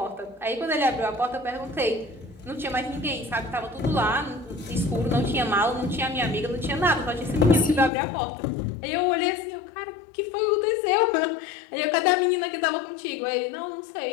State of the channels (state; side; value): drops out; right; at 7.9 s